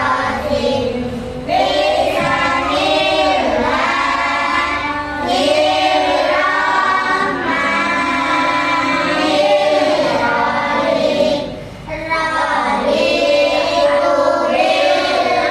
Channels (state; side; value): identical; both; correlation 1.00